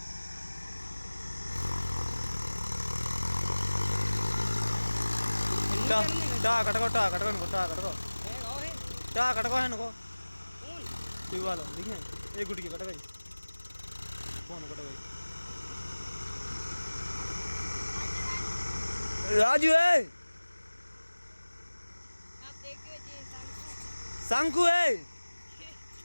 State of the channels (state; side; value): inverted; both; correlation -1.00